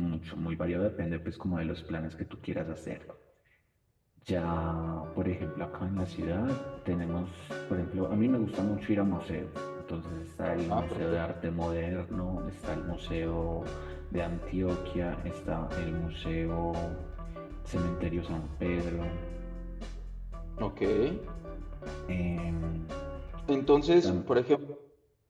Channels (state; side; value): identical; both; correlation 1.00